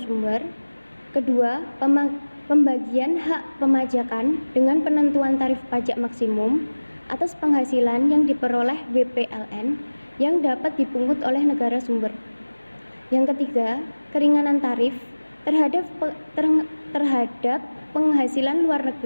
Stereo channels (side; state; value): both; inverted; correlation -1.00